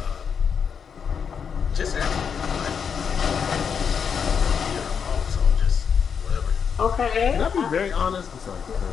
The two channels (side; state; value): right; quieter; 6.8 dB